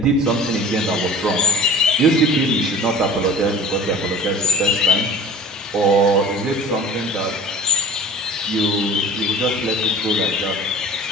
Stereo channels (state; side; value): normal; both; correlation 0.41